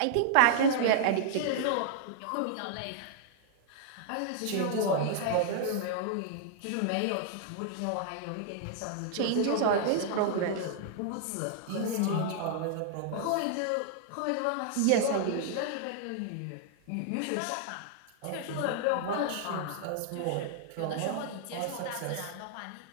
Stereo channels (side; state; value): both; different; correlation -0.01